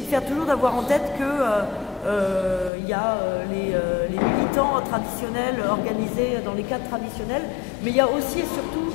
de faire toujours d'avoir en tête que il y a les militants traditionnels organisés dans les cadres traditionnels, mais il y a aussi et surtout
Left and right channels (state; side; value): drops out; right; at 2.7 s